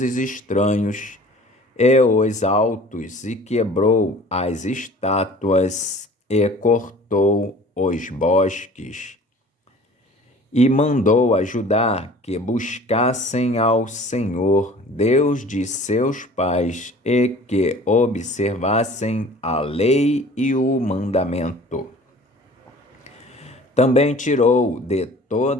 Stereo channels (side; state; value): both; normal; correlation 0.47